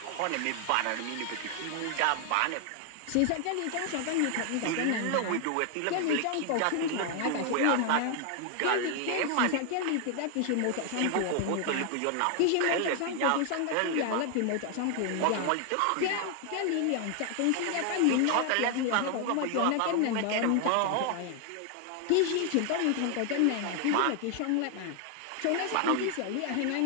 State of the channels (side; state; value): both; different; correlation 0.00